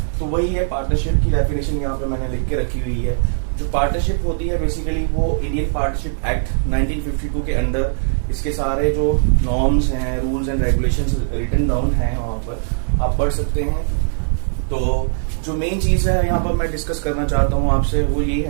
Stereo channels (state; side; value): silent; left; digital silence